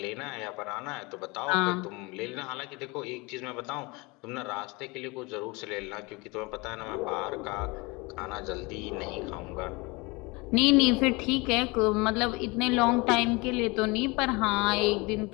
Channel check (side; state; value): right; quieter; 25.8 dB